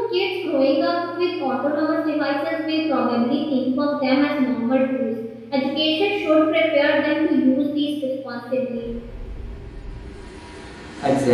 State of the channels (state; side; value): identical; both; correlation 1.00